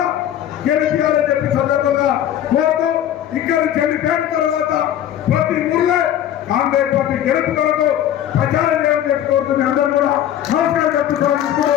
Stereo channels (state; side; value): quieter; right; 11.2 dB